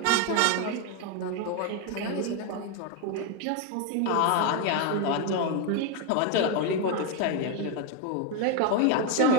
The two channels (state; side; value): different; both; correlation 0.01